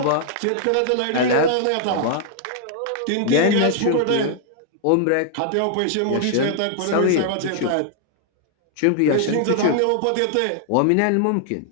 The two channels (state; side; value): different; both; correlation -0.01